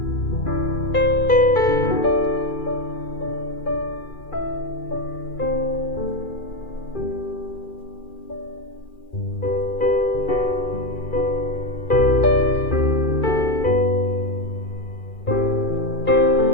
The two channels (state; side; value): late; right; 2.4 ms